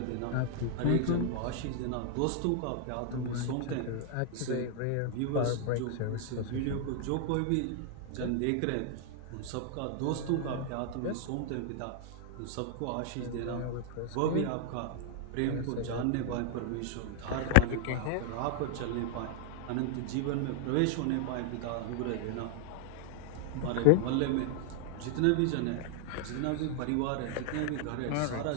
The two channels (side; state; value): both; different; correlation -0.01